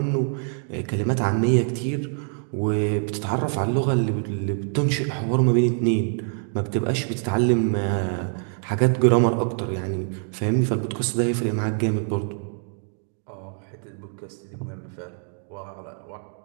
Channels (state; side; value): silent; left; 55 dB below the other